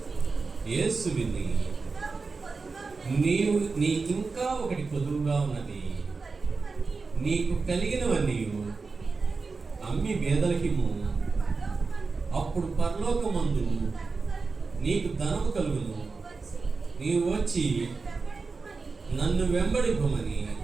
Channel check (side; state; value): left; quieter; 4.3 dB